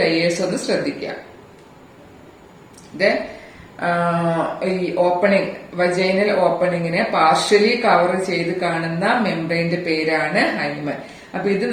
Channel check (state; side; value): identical; both; correlation 1.00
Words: ലെയേഴ്സ് ഒന്ന് ശ്രദ്ധിക്കാം. ഈ ഓപ്പണിംഗ്, വജൈനൽ ഓപ്പണിങ്ങിനെ പാർഷ്യലി കവർ ചെയ്ത് കാണുന്ന മെംബ്രെയിന്റെ പേരാണ് ഹൈമൻ. അപ്പൊ ഇത്